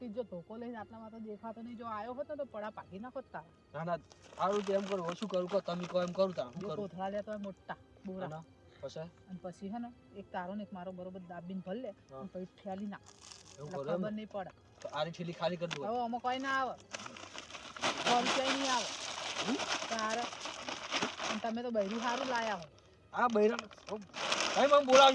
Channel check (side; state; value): both; identical; correlation 1.00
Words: જો ધોકો લઈને આટલામાં તો દેખાતો નહીં. જો આવ્યો હોત ને તો પડા પાકી નાખો તારા. ના ના સારું તો એમ કરું હવે શું કરું કહો? તમે કહો એમ કરું તાર. જો શું કરું? કોથળા લેતો હોય મોટા બોરા ના, પછી અને પછી હે ને એક તારો ને એક મારો બરોબર દાબીને ભર લે હા. અને પછી ફેલી નાખ એવું એટલે કરું એમ ખબર ને? નહીં પડે. તો આરી ઠેલી ખાલી કરી દઉં. હવે આમાં કોઈ ના આવે 100 રૂપિયા નહીં આવે તારે. અને તમે તો બૈરું સારું લાયા હો. આ બૈરાન ભાઈ મને